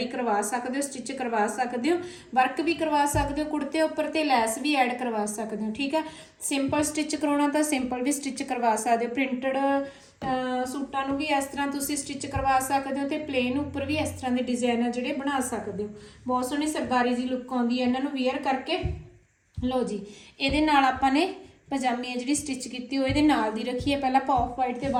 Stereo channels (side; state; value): both; identical; correlation 1.00